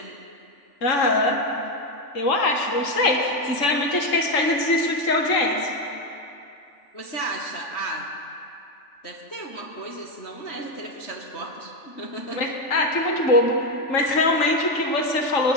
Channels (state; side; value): late; right; 3.5 ms